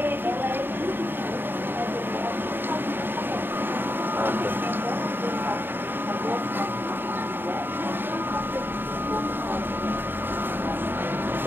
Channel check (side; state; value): left; late; 0.096 ms